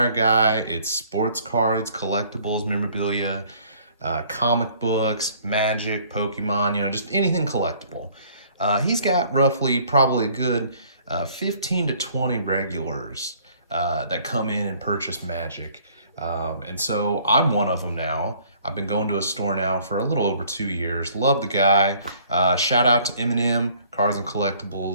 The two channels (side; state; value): both; inverted; correlation -0.58